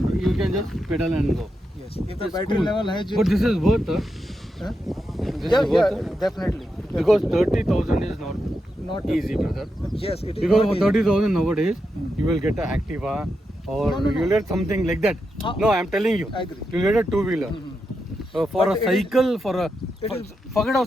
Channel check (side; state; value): both; normal; correlation 0.86